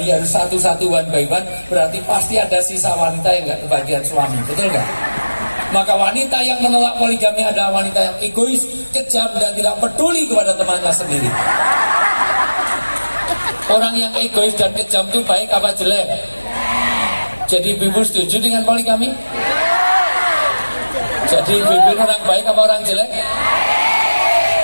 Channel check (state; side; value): inverted; both; correlation -1.00